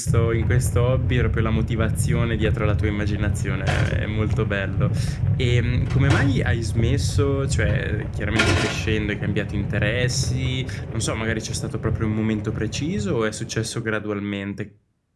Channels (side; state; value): both; identical; correlation 1.00